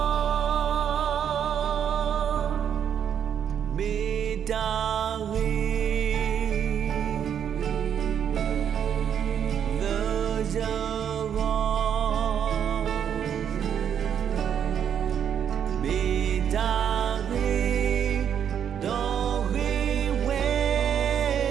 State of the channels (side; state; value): left; quieter; 8.7 dB